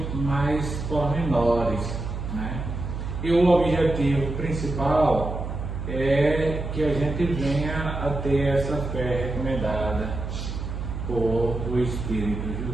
mais pormenores, né? E o objetivo principal é que a gente venha a ter essa fé recomendada por o Espírito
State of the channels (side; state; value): right; noise; hum, 5 dB below the sound